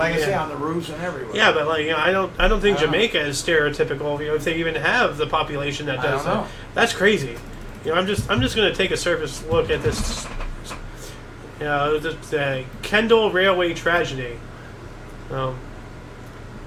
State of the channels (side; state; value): both; identical; correlation 1.00